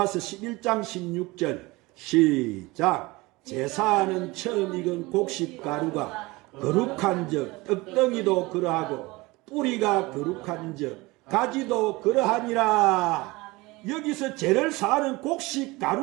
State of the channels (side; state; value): left; quieter; 22.4 dB